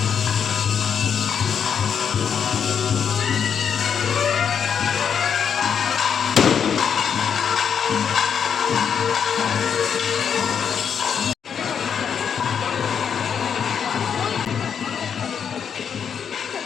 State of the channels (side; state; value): right; quieter; 7.4 dB